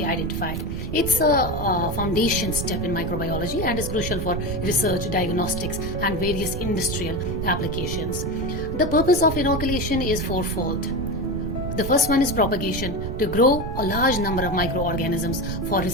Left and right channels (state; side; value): noise; right; rumble, 5 dB below the sound